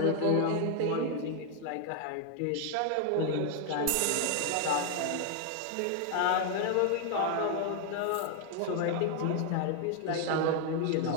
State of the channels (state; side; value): different; both; correlation 0.00